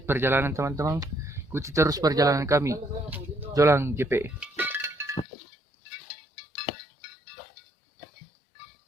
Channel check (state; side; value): drops out; right; at 5.2 s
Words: perjalanan teman-teman. Ikuti terus perjalanan kami, Jolang JP.